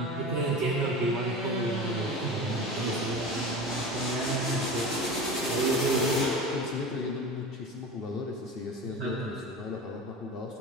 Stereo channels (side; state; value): both; normal; correlation 0.31